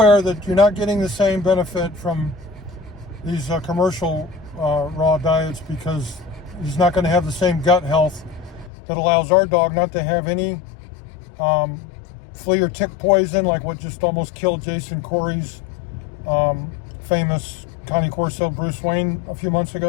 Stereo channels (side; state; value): right; drops out; at 8.7 s